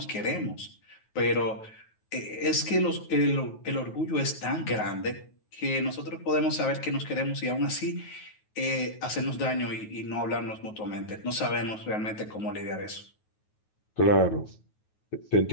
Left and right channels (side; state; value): right; late; 9.3 ms